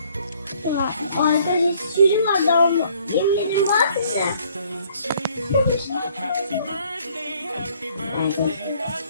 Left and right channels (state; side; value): inverted; both; correlation -0.61